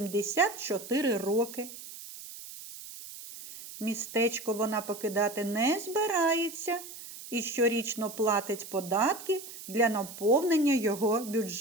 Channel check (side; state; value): right; noise; hiss, 13 dB below the sound